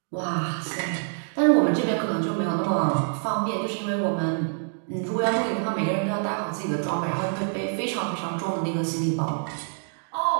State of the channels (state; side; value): silent; left; digital silence